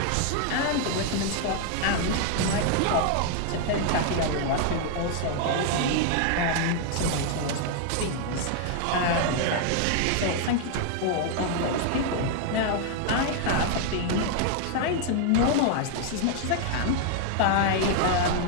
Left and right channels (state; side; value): different; both; correlation 0.00